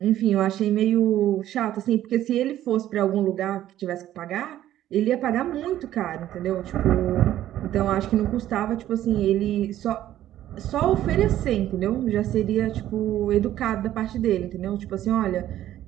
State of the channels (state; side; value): quieter; left; 12.8 dB